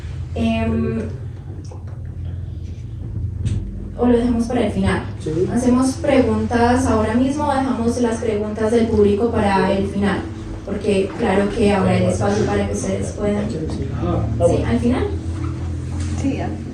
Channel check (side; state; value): both; identical; correlation 1.00